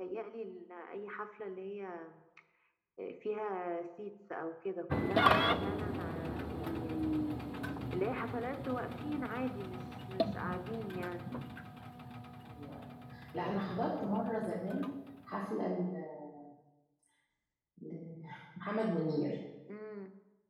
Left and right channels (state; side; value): identical; both; correlation 1.00